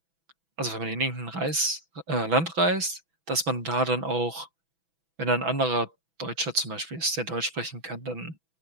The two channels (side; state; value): left; late; 6.1 ms